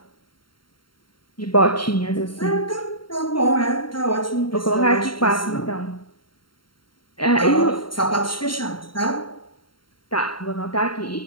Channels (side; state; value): right; late; 0.73 ms